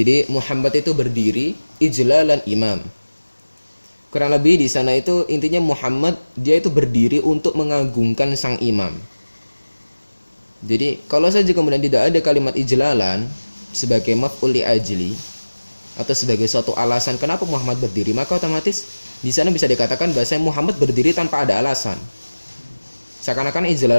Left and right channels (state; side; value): inverted; both; correlation -1.00